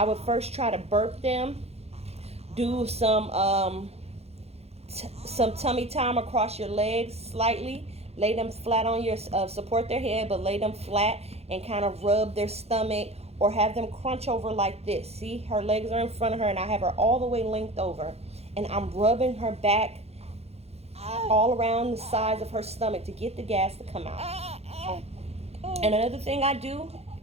would first try to burp them, do some tummy time across your legs slightly. Lay them flat on your, support their head, but lay them flat and kind of rub their stomach, or have them crunch over like this. See, her legs are in front of her and I have her all the way linked over. And I'm rubbing her back all around the sides of her stomach to get the gas to come out. And another thing I do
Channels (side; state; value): left; late; 0.30 ms